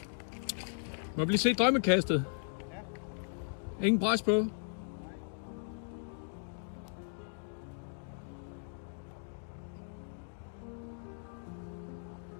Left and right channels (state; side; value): silent; right; digital silence